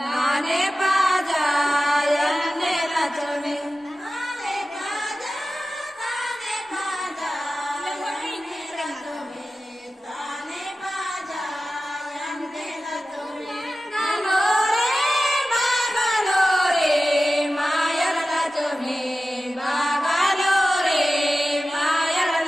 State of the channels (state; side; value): normal; both; correlation 0.95